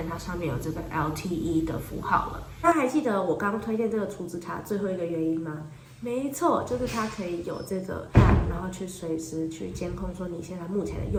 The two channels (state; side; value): identical; both; correlation 1.00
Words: 它上面有这个 LTE 的符号了。那还记得我刚刚推荐这个储值卡最后一个原因吗？没错，就是它可以有这个 app， 然后去随时去监控说你现在目前的